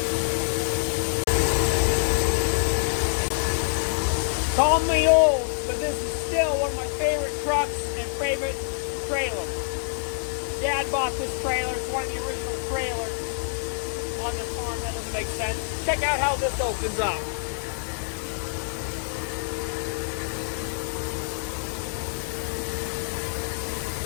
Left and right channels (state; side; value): silent; right; digital silence